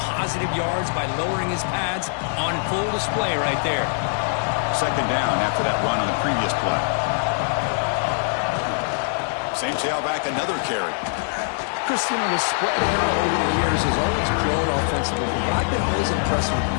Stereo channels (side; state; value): right; silent; digital silence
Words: positive yards by lowering his pads on full display right there. 2nd down after that run on the previous play. Same tailback, another carry. Christian, the spread era over the years has always grown offensively, but I've been always impressed with